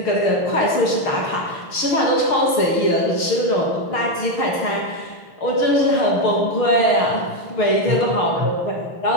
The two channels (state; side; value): late; right; 6.5 ms